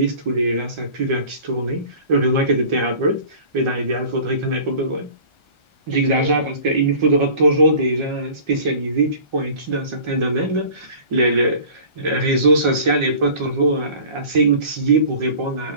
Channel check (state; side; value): late; left; 1.4 ms